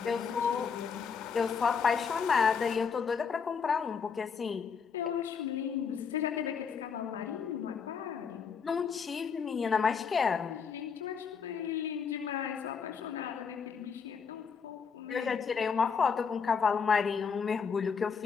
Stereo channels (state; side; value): quieter; right; 6.1 dB